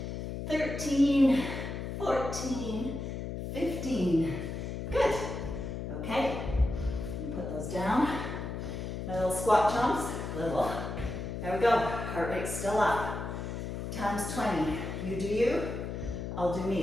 13, 14, 15. Good. Okay. Put those down. My little squat jumps. Little. There we go. Heart rate's still up. Times 20. You do you. I'll do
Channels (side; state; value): left; noise; hum, 5 dB below the sound